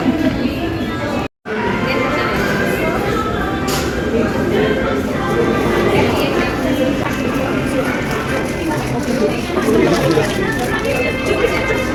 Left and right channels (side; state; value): both; identical; correlation 1.00